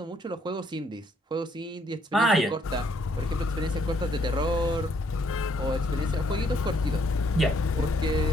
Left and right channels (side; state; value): both; normal; correlation 0.69